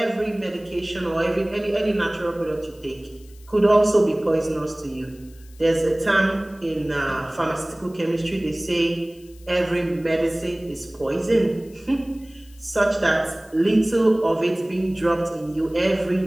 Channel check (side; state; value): left; noise; hiss, 27 dB below the sound